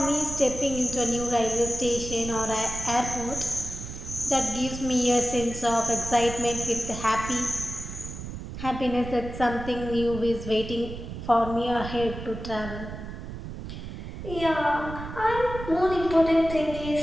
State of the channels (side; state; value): right; noise; rumble, 9 dB below the sound